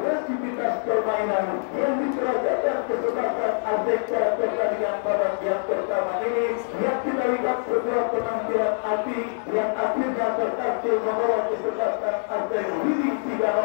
permainan yang diperagakan kesebelasan Asing pada pertandingan babak yang pertama ini, yang kita lihat sebuah penampilan api yang akhirnya berhasil membawa kesebelasan Asing leading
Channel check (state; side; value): silent; right; digital silence